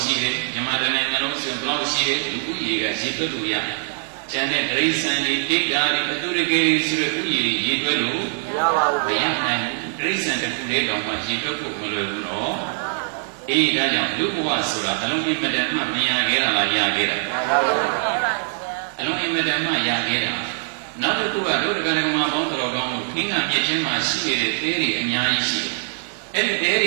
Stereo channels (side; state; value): left; silent; 64 dB below the other